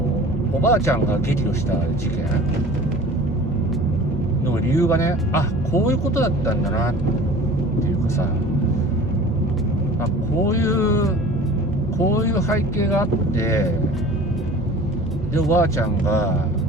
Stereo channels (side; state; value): both; normal; correlation 0.43